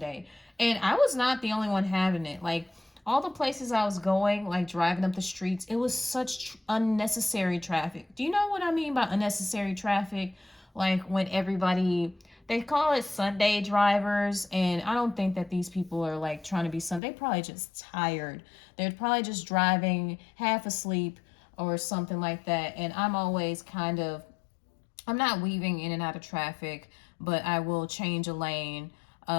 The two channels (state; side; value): drops out; right; at 17.0 s